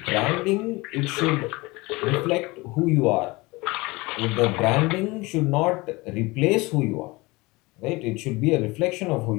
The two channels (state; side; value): quieter; right; 23.2 dB